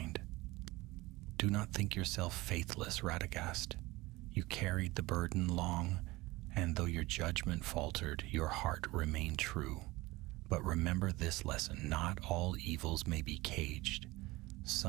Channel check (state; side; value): quieter; left; 20.6 dB